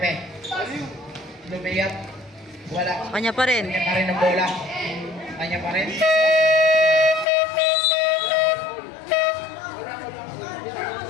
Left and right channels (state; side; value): drops out; right; at 7.2 s